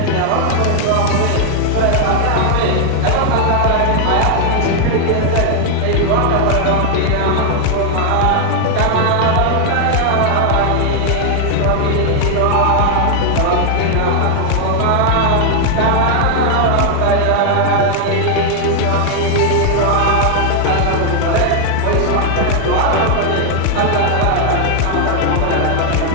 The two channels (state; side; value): different; both; correlation 0.00